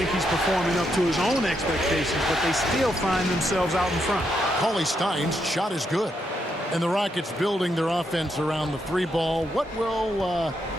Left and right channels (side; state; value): both; normal; correlation 0.80